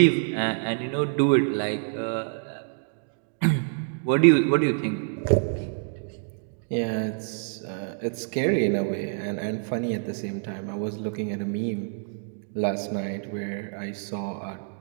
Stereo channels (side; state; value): left; silent; 60 dB below the other